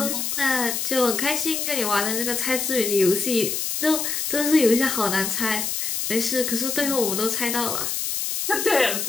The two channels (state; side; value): noise; left; hiss, 1 dB below the sound